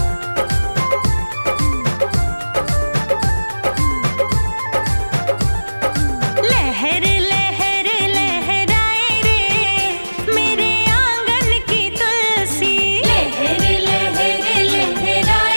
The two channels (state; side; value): inverted; both; correlation -1.00